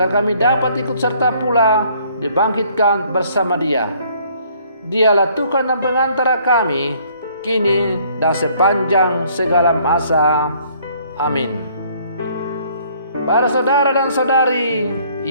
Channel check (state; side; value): inverted; both; correlation -0.61